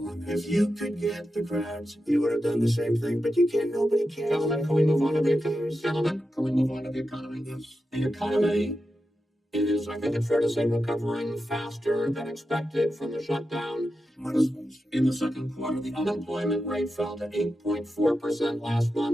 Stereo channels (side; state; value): both; normal; correlation 0.90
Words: on this. If you could get the crowds, you would have done the same thing, but you can't. Nobody cares. Gentlemen, can we move on to the economy? Gentlemen, can we move on to the economy? Yes. The economy is, I think it's fair to say, recovering faster than expected from the shutdown. In the second quarter, the unemployment rate fell to 8.4% last